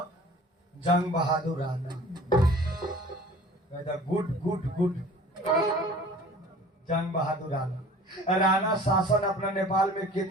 जंग बहादुर राणा। कहता गुड गुड गुड जंग बहादुर राणा। राणा शासन अपना नेपाल में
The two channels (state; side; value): normal; both; correlation 0.46